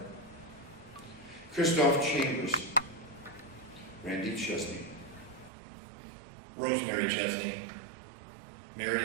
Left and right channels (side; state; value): left; drops out; at 5.5 s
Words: Christoph Chambers, Randy Chesney, Rosemary Chesney,